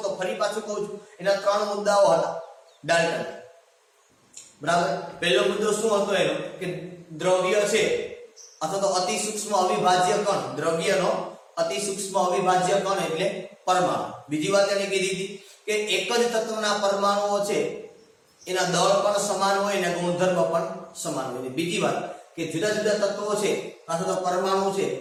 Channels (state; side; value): identical; both; correlation 1.00